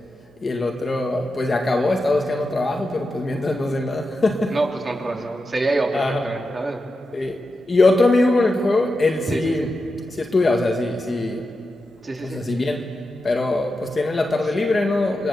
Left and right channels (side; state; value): both; normal; correlation 0.89